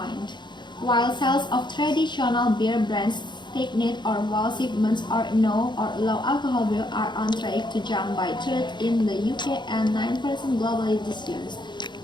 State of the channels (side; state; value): right; late; 0.22 ms